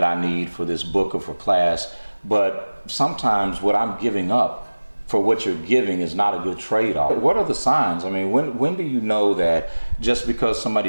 I need for this book or for class, but sometimes what I'm giving up for what you're giving is not a good trade-off. What are the signs? I mean, when do you know that just because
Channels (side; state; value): both; inverted; correlation -1.00